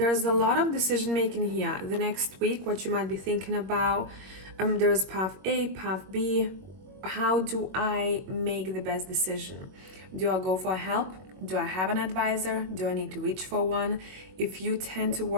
a lot of decision making here the next week, what you might be thinking about. There's path A, path B. How do I make the best decision? Do I go for help? Do I have an advisor? Do I need to reach for one? If you tend to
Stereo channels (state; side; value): late; left; 21 ms